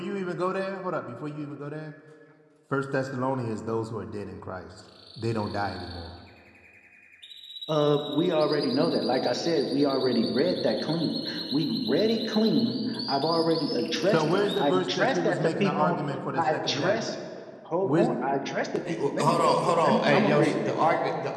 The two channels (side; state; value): both; identical; correlation 1.00